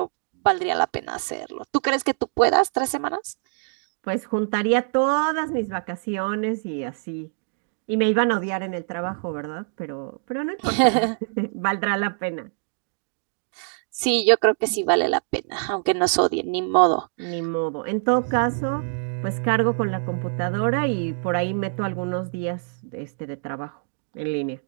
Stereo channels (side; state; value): left; silent; digital silence